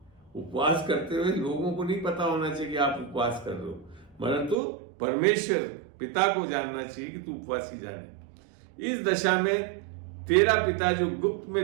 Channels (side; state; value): left; drops out; at 4.5 s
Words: उपवास करते हुए लोगों को नहीं पता होना चाहिए कि आप उपवास कर रहे हो, मगर तो परमेश्वर पिता को जानना चाहिए कि तू उपवासी जाने। इस दशा में तेरा पिता जो गुप्त